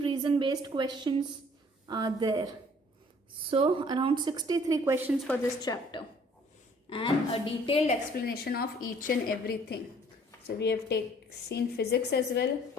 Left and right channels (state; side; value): normal; both; correlation 0.57